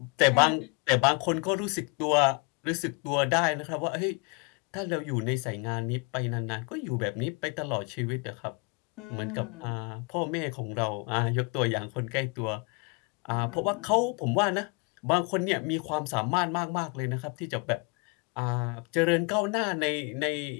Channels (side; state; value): right; quieter; 31.7 dB